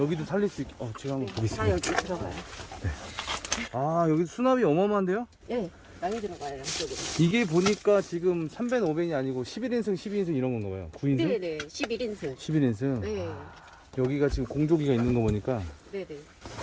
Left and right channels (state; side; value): identical; both; correlation 1.00